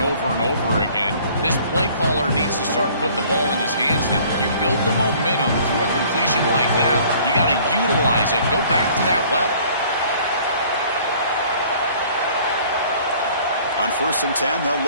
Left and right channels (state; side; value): inverted; both; correlation -0.54